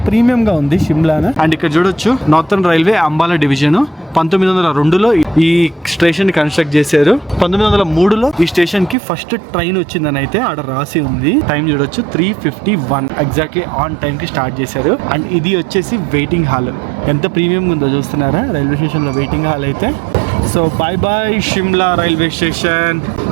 ప్రీమియం గా ఉంది షిమ్లా. అండ్ ఇక్కడ చూడొచ్చు నార్థన్ రైల్వే అంబాలా డివిజన్ 1902లో ఈ స్టేషన్ ని కన్స్ట్రక్ట్ చేశారు. 1903లో ఈ స్టేషన్ కి ఫస్ట్ ట్రైన్ వచ్చిందని అయితే ఆడ రాసి ఉంది. టైం చూడొచ్చు 3:51 ఎగ్జాక్ట్లీ ఆన్ టైం కి స్టార్ట్ చేశారు. అండ్ ఇది వచ్చేసి వెయిటింగ్ హాల్. ఎంత ప్రీమియం ఉందో చూస్తున్నారా రైల్వే స్టేషన్ లో వెయిటింగ్ హాల్ అయితే. So bye Shimla railway station.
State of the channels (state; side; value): drops out; left; at 9.0 s